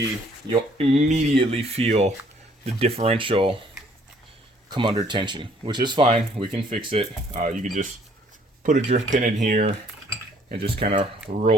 immediately feel the differential come under tension, which is fine. We can fix it. You can just put a drift pin in here and just kind of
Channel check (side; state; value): both; normal; correlation 0.62